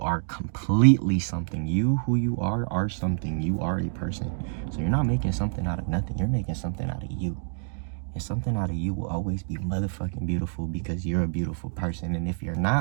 completely something. You, who you are something. You are a person. So you're not making something out of nothing. You're making something out of you. And something out of you will always be motherfucking beautiful because you're a beautiful person. And if you're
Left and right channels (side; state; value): left; silent; digital silence